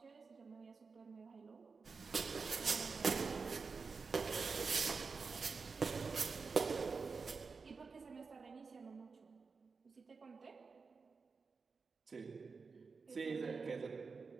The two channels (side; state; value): left; quieter; 4.8 dB